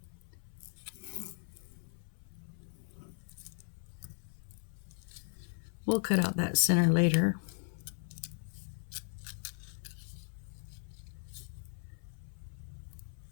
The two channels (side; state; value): right; silent; 53 dB below the other